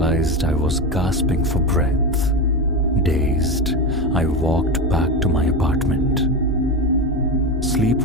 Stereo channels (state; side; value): normal; both; correlation 0.18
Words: I was gasping for breath. Dazed, I walked back to my apartment. Sleep